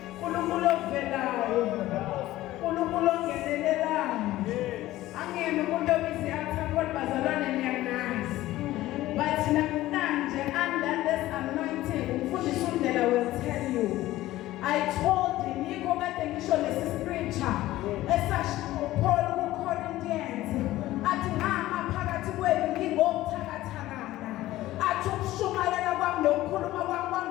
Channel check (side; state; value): right; quieter; 16.0 dB